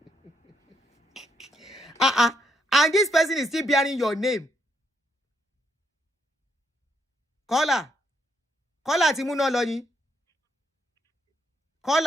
now. And this person is still bearing your name. Caller Timuno Loni.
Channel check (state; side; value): normal; both; correlation 0.75